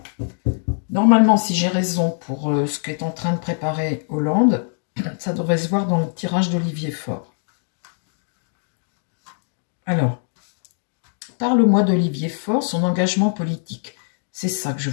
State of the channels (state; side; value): silent; right; digital silence